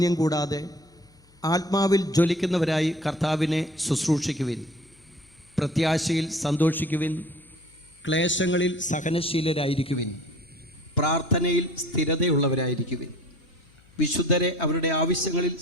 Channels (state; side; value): noise; left; hum, 30 dB below the sound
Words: കൂടാതെ ആത്മാവിൽ ജ്വലിക്കുന്നവരായി കർത്താവിനെ ശുശ്രൂഷിക്കുവിൻ. പ്രത്യാശയിൽ സന്തോഷിക്കുവിൻ. ക്ലേശങ്ങളിൽ സഹനശീലരായിരിക്കുവിൻ. പ്രാർത്ഥനയിൽ സ്ഥിരതയുള്ളവരായിരിക്കുവിൻ. വിശുദ്ധരെ അവരുടെ ആവശ്യങ്ങളിൽ